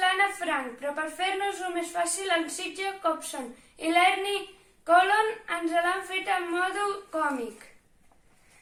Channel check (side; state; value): both; identical; correlation 1.00